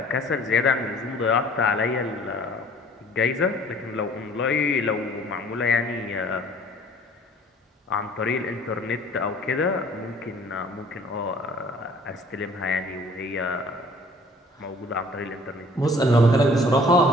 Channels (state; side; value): normal; both; correlation 0.53